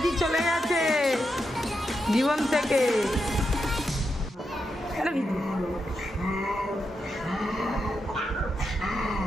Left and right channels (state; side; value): normal; both; correlation 0.85